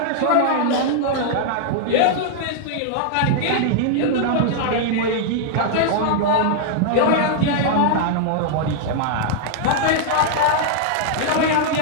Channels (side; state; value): both; different; correlation -0.01